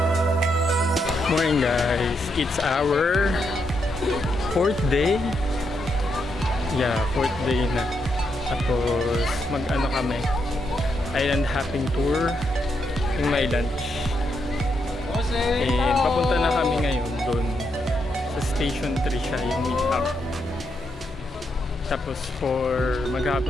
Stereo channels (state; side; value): normal; both; correlation 0.80